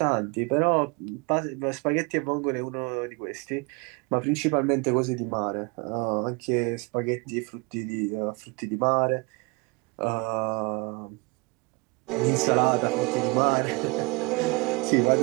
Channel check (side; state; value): left; quieter; 27.5 dB